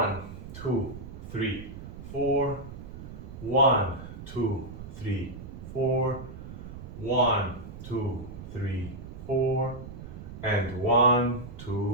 2, 3, 4, 1, 2, 3, 4, 1, 2, 3, 4, and 1,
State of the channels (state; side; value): noise; right; rumble, 12 dB below the sound